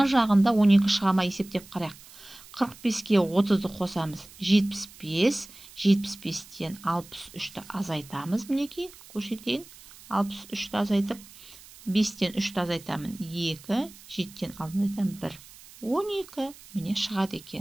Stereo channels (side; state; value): right; noise; hiss, 20 dB below the sound